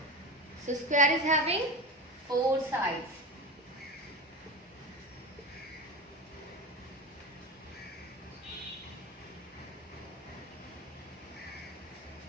So square is having 4 sides.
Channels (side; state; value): both; normal; correlation 0.25